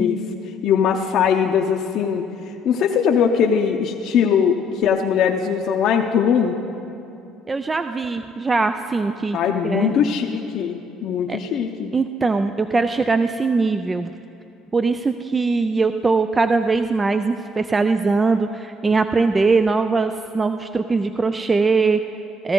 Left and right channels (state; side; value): normal; both; correlation 0.69